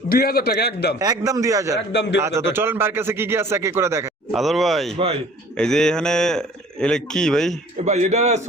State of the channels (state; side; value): normal; both; correlation 0.51